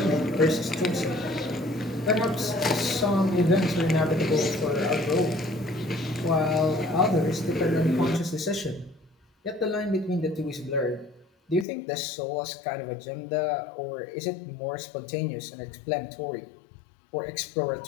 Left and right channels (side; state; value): right; drops out; at 11.7 s